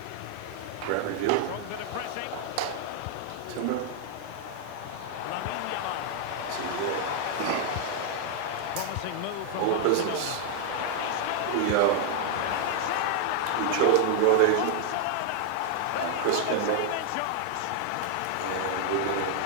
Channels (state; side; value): different; both; correlation 0.00